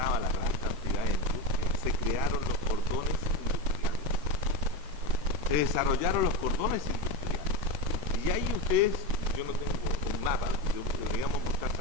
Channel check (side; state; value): left; late; 13 ms